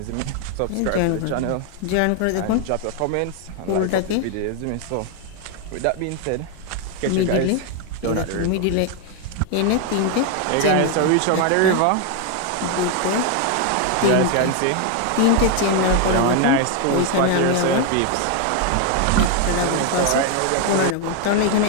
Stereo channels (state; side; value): different; both; correlation 0.01